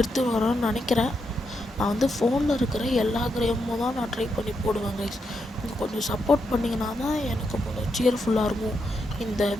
வரேன்னு நினைக்கிறேன். நான் வந்து ஃபோனில் இருக்கிற எல்லா கேமும் தான் நான் ட்ரை பண்ணி போடுவேன் கைஸ். நீங்கள் கொஞ்சம் சப்போர்ட் பண்ணிங்கன்னா தான் எனக்கு கொஞ்சம் சியர்ஃபுல்லாக இருக்கும். இந்த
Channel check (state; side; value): normal; both; correlation 0.82